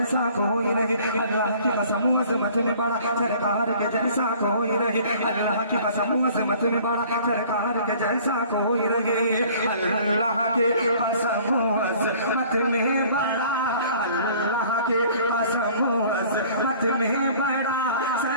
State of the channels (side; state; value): both; inverted; correlation -0.52